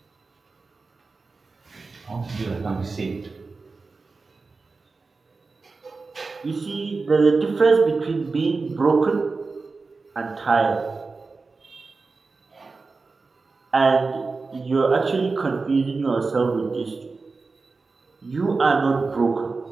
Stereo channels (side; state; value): left; quieter; 4.1 dB